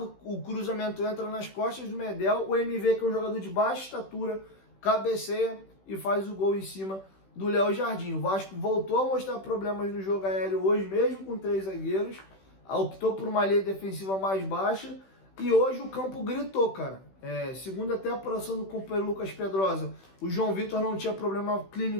o cruzamento entra nas costas do Medel, o MV, que é um jogador de baixa estatura, cabeceia e faz o gol em cima do Léo Jardim. O Vasco voltou a mostrar problemas no jogo aéreo hoje, mesmo com 3 zagueiros, optou por uma linha defensiva mais baixa, e hoje o campo gritou, cara. Segundo até a apuração do companheiro Lucas Pedrosa, o João Vitor não tinha problema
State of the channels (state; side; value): late; right; 16 ms